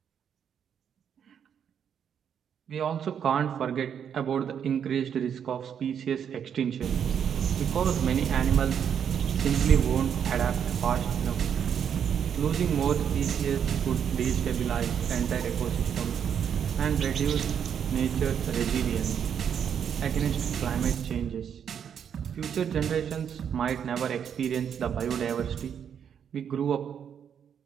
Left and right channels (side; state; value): left; quieter; 8.2 dB